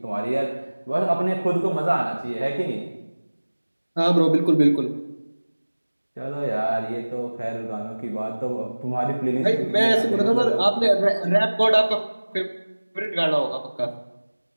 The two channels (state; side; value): inverted; both; correlation -1.00